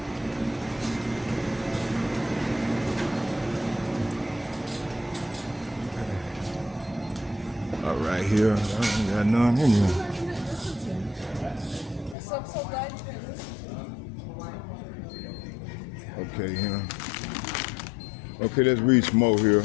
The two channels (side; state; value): right; drops out; at 12.2 s